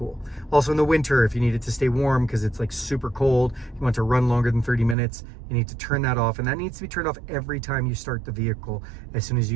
Also in the winter, if you need it to stay warm because it's like super cold, you want to run longer than 30 minutes, you need to turn that off, and that needs to be turned off every time you start the vehicle. As soon as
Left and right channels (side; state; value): left; drops out; at 5.0 s